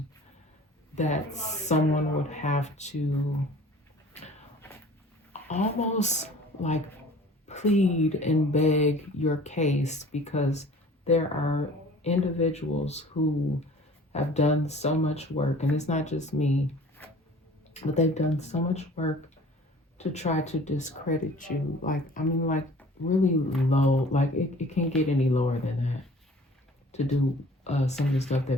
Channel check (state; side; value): normal; both; correlation 0.48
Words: that someone would have to almost like plead and beg your case, because there are individuals who have done so much work, and it's not just me, but they've done so much work to try to discredit you. Like, I mean, like really low, like it can't get any lower than that to do some of the stuff